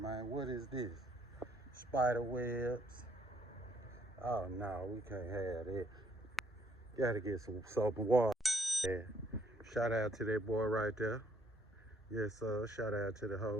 What is this? Spider webs. Oh no, we can't have that. Gotta get some soap and water. Yeah. Shout out to that boy right there. Yes, sir. Shout out to the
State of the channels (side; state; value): both; normal; correlation 0.67